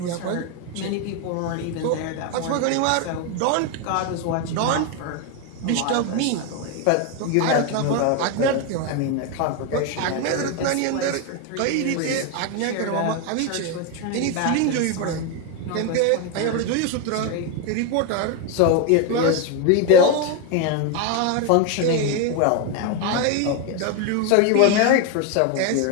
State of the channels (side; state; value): both; different; correlation 0.02